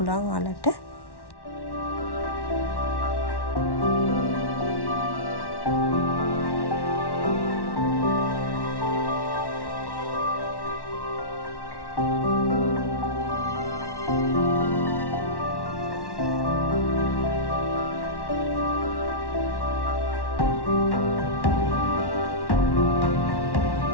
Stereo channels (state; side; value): late; right; 1.1 ms